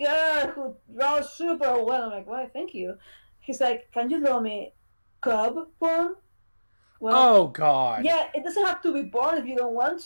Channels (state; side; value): inverted; both; correlation -1.00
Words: who draws super well. I'm like, why, thank you. He's like, can you draw me cub porn? Well, oh God. Yeah, it doesn't have to be porn if you don't want